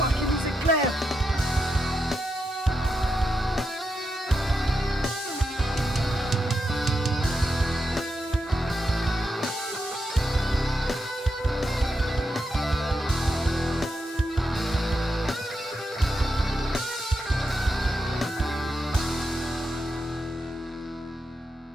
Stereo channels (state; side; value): normal; both; correlation 0.85